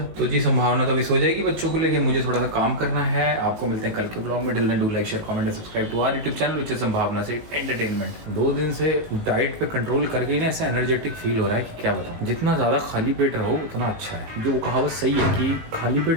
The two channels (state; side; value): late; left; 18 ms